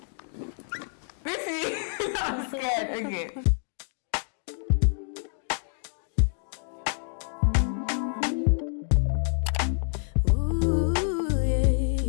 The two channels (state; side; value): silent; right; 60 dB below the other